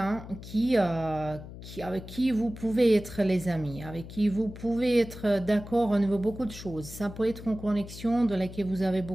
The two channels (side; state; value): left; noise; hum, 13 dB below the sound